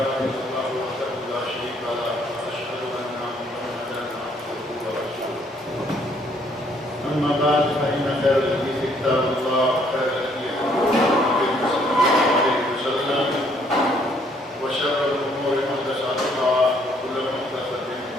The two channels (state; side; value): normal; both; correlation 0.65